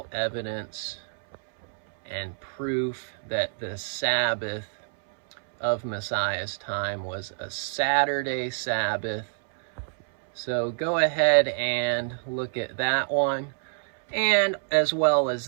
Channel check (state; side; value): silent; left; 60 dB below the other